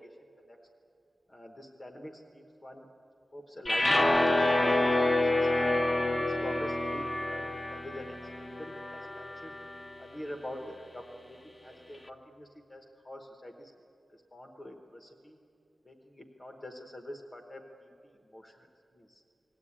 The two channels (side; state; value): both; normal; correlation 0.96